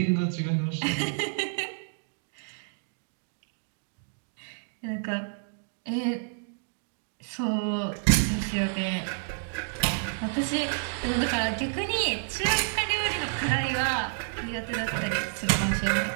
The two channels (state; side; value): silent; left; 58 dB below the other